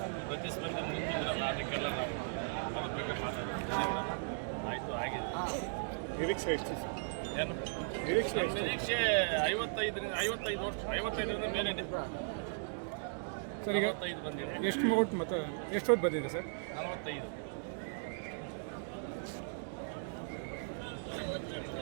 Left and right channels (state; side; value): silent; left; digital silence